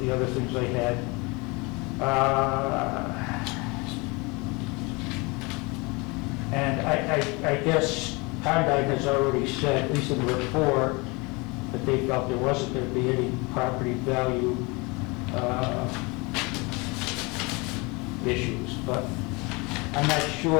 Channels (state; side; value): quieter; right; 27.0 dB